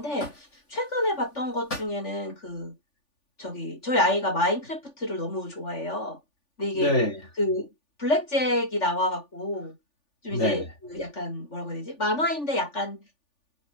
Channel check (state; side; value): late; right; 3.4 ms